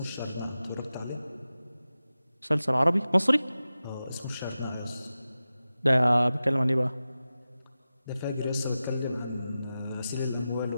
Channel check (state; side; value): inverted; both; correlation -0.94